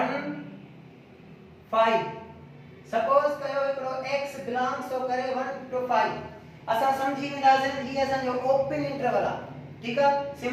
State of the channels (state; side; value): identical; both; correlation 1.00